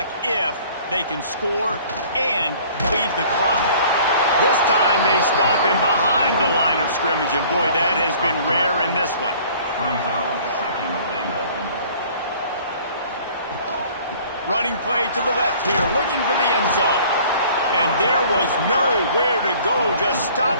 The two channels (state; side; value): inverted; both; correlation -0.52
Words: if they can score and bleed the clock. This time they stop him behind the line of scrimmage, and boy, that has been rare in this one. Running play to the left here, looking for the end zone. And there was nowhere to go, just